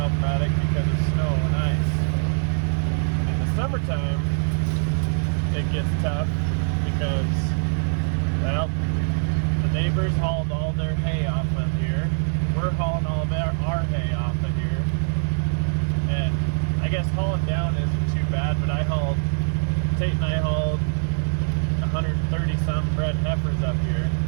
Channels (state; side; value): silent; left; digital silence